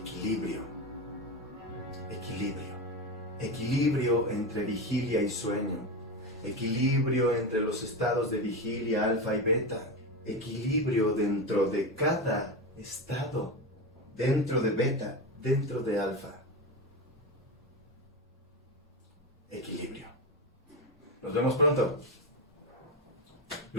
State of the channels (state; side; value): normal; both; correlation 0.18